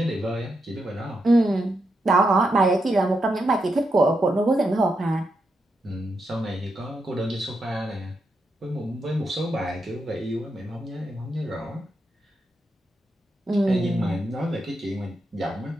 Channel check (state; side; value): normal; both; correlation 0.83